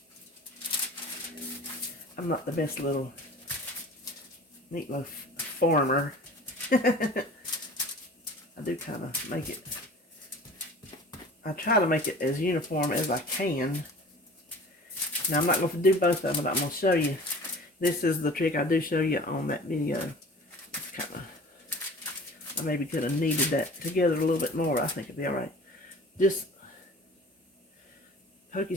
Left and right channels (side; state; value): both; normal; correlation 0.43